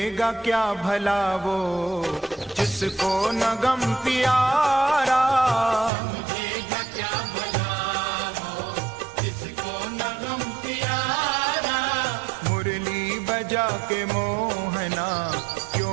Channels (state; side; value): drops out; left; at 5.9 s